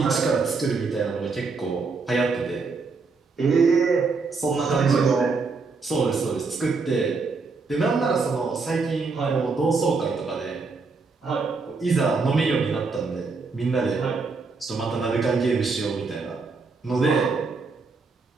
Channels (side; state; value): left; quieter; 4.4 dB